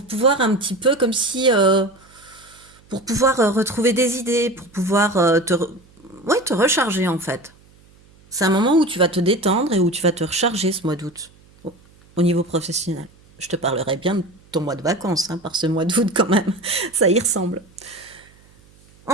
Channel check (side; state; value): right; noise; hum, 28 dB below the sound